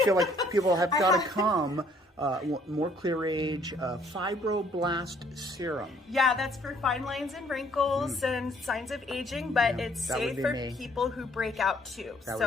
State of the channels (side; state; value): both; normal; correlation 0.63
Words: like people have got to come. More Craige Fibroblast Serum. Yeah, that's for fine lines and wrinkles and signs of aging, but it's safe for people who break out too.